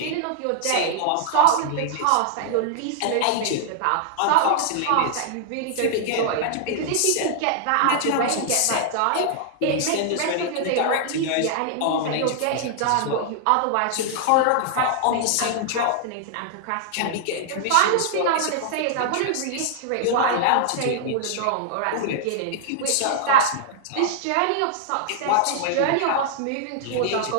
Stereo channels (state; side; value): different; both; correlation -0.01